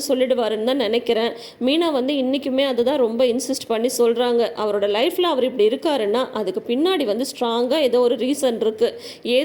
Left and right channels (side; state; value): both; identical; correlation 1.00